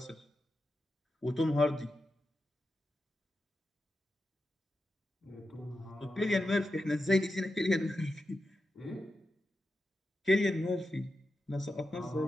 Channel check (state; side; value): normal; both; correlation 0.90